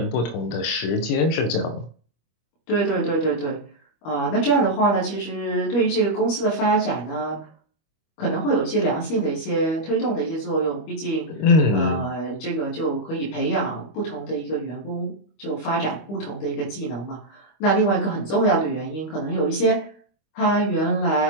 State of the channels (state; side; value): late; right; 25 ms